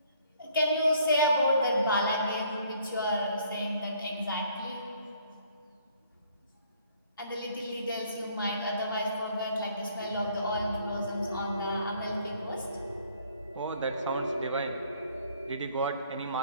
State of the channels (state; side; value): inverted; both; correlation -0.62